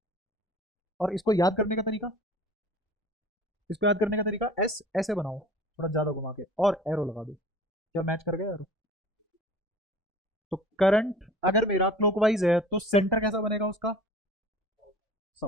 और इसको याद करने का तरीका, इसको याद करने का तरीका, एस ऐसे बनाओ, थोड़ा ज्यादा घुमा के, और एरो लगा दो। क्या मैच कर गया एरो? तो करंट अगर मेरा क्लॉकवाइज है तो सेंटर कैसा बनेगा उसका?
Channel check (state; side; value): normal; both; correlation 0.44